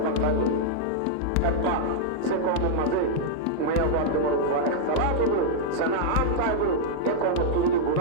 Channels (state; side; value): different; both; correlation -0.02